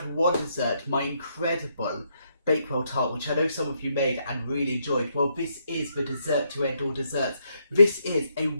one dessert, my incredible Bakewell tart, which I know some of you made and really enjoyed. Well, this is the dessert to end all desserts. This is a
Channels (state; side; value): inverted; both; correlation -0.76